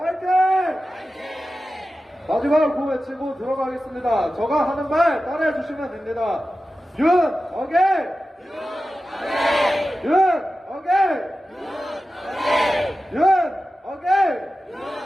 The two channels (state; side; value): normal; both; correlation 0.94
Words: 마지막으로 구호 외치고 들어가겠습니다. 제가 하는 말 따라해 주시면 됩니다. 윤석열! 윤석열! 윤석열!